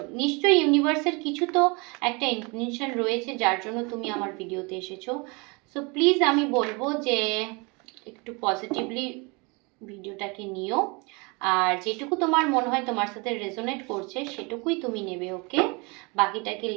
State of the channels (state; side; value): quieter; left; 29.0 dB